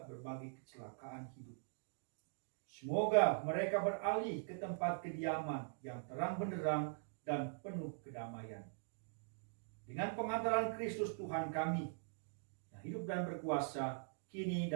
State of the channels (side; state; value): left; silent; digital silence